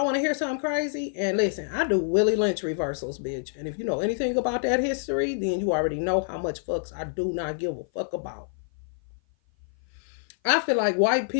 want to hear something crazy. And listen, I do Willie Lynch reversals, bitch. And if you know anything about that history, then you already know how much fucks I do not give a fuck about. I feel like white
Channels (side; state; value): right; silent; 55 dB below the other